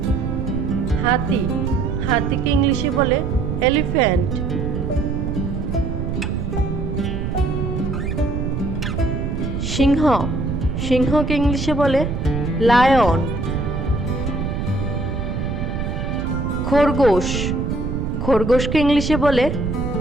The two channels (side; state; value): right; noise; rumble, 3 dB below the sound